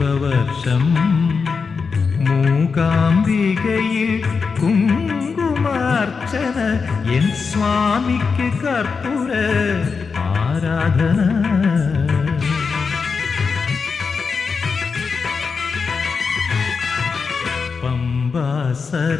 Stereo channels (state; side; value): quieter; right; 5.2 dB